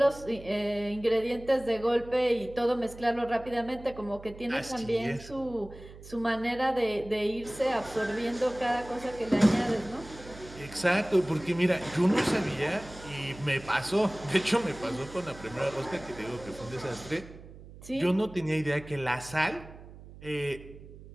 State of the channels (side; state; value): right; noise; hum, 17 dB below the sound